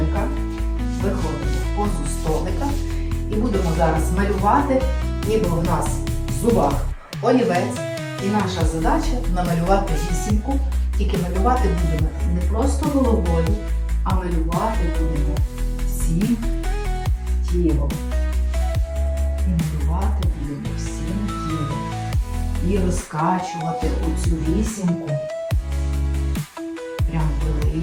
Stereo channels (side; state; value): both; identical; correlation 1.00